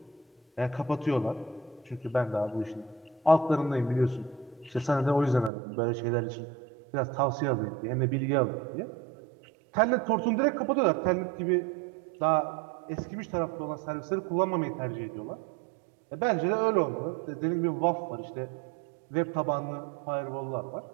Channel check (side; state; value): left; drops out; at 5.5 s